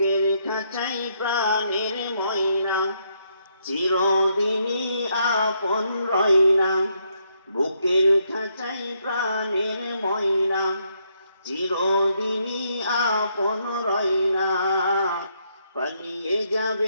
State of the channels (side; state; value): both; inverted; correlation -0.75